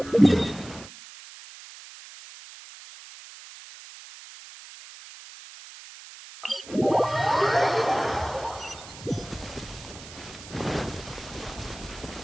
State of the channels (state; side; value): noise; right; hiss, 16 dB below the sound